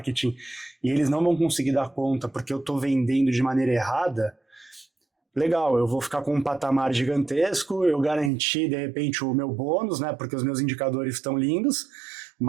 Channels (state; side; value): drops out; left; at 8.3 s